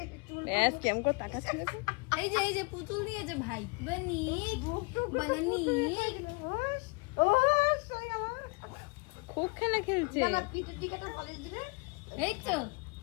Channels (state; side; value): quieter; right; 30.7 dB